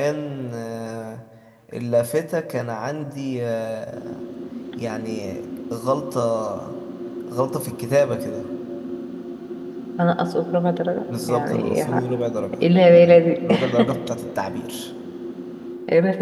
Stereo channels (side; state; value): both; identical; correlation 1.00